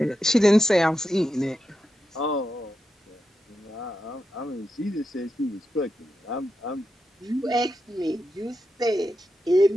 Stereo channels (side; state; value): both; normal; correlation 0.87